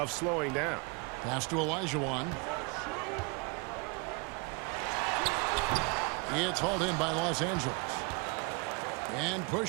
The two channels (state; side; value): quieter; left; 30.8 dB